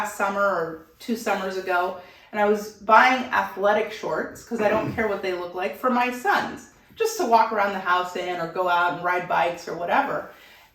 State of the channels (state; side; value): identical; both; correlation 1.00